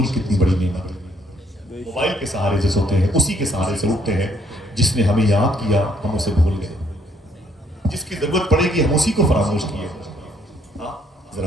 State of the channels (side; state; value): both; normal; correlation 0.67